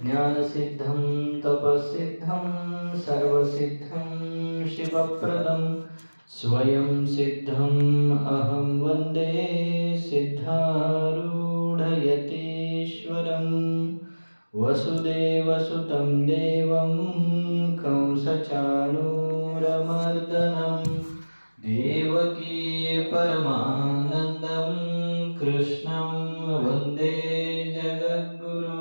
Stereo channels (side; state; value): both; inverted; correlation -1.00